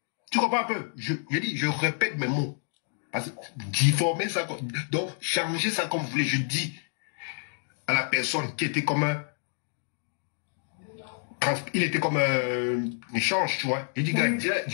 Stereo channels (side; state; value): right; silent; digital silence